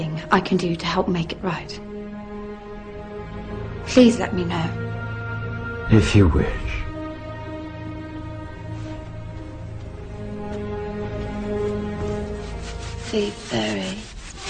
I can do to help make it right. Please let me know. If you wish. Be very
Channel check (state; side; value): identical; both; correlation 1.00